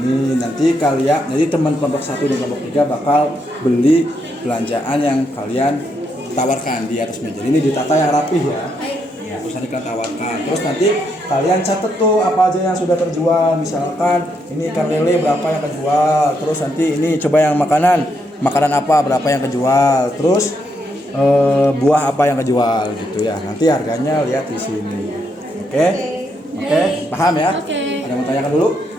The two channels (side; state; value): both; normal; correlation 0.78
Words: Nanti kalian, jadi teman kelompok 1 dan kelompok 3 bakal beli belanjaan yang kalian tawarkan di atas meja. Ini ditata yang rapih ya. Ya, terus nanti kalian tawarkan. Terus nanti kalian catat tuh apa aja yang sudah terjual. Misalkan ini ikan lele berapa yang kejual. Terus nanti ini coba yang makanan apa berapa yang kejual. Terus buah apa yang kejual gitu ya. Nanti harganya lihat di sini. Oke? Oke? Paham ya? Ada yang mau tanyakan dulu?